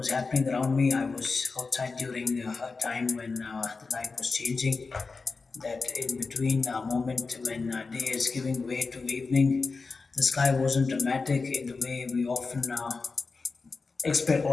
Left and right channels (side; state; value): right; quieter; 4.2 dB